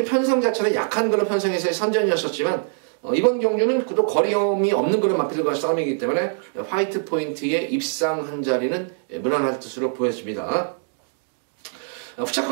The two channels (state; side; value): silent; left; digital silence